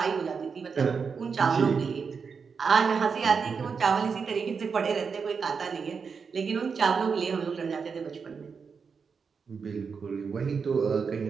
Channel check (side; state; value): left; quieter; 5.6 dB